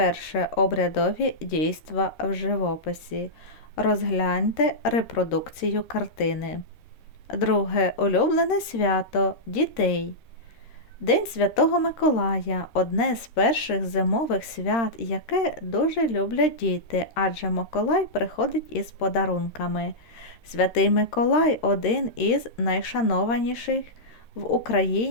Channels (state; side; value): late; right; 13 ms